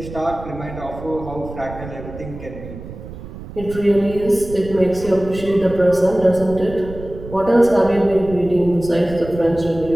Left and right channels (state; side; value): noise; right; rumble, 13 dB below the sound